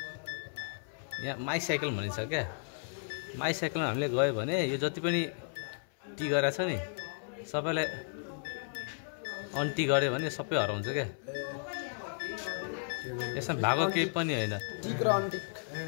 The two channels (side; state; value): right; silent; 55 dB below the other